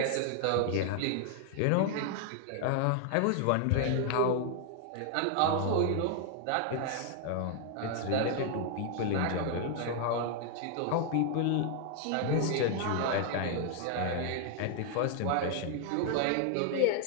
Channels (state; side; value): different; both; correlation 0.00